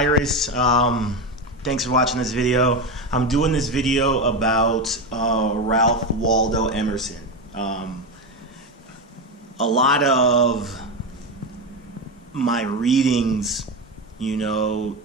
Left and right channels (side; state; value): both; normal; correlation 0.15